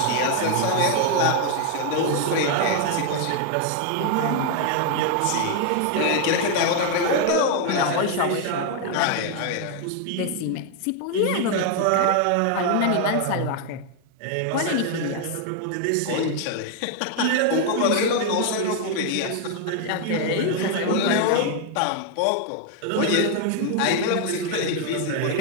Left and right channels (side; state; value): both; different; correlation 0.00